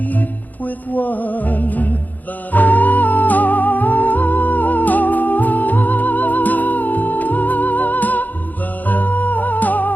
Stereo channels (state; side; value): late; right; 0.082 ms